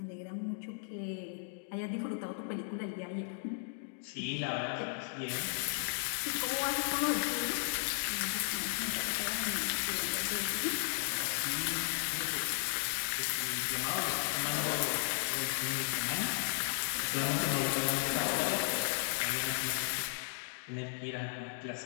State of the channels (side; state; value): right; silent; digital silence